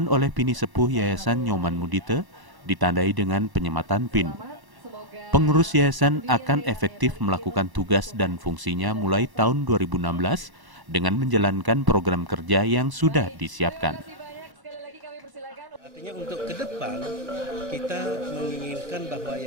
oleh Pini Sepuh Yayasan Nyoman Mudite, ditandai dengan penyematan PIN. Pengurus yayasan akan efektif melakukan tugas dan fungsinya mulai tahun 2016 dengan menjalankan program kerja yang sudah disiapkan. Artinya untuk ke depan kita menginginkan bahwa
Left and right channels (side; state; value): left; late; 1.0 ms